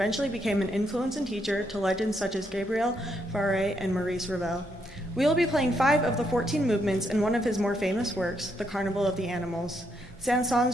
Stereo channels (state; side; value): normal; both; correlation 0.77